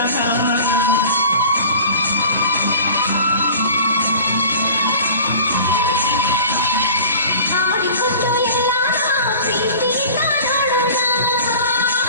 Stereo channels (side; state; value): both; inverted; correlation -0.41